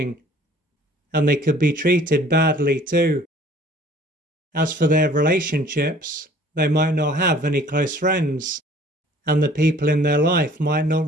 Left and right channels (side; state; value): both; normal; correlation 0.53